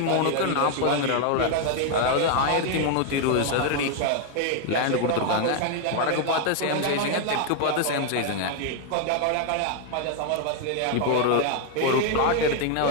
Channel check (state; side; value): different; both; correlation 0.01